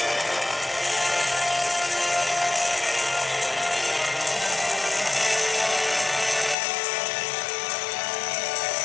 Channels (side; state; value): right; drops out; at 6.6 s